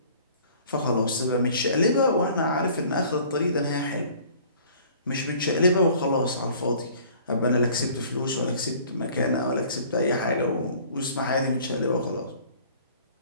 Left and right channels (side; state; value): both; inverted; correlation -0.52